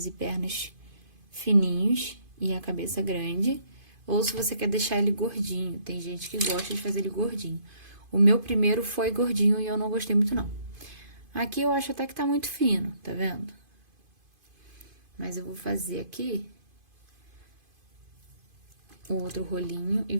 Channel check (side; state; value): left; late; 2.5 ms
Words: e pernas fininhos e a cabeça grande, ou se você quer deixar ele gordinho. Tem gente que gosta de fazer ele gordinho. O meu primeiro foi gordinho e eu não gostei muito, não. Aqui eu acho até que tá muito fino, tá vendo? Mas eu vou fazer aqui o outro rolinho e